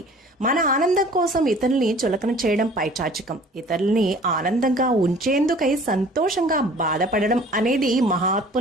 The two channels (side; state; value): both; normal; correlation 0.49